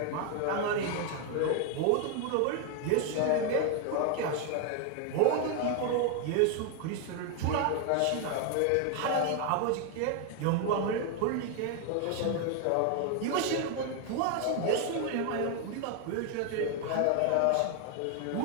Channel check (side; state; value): both; different; correlation 0.01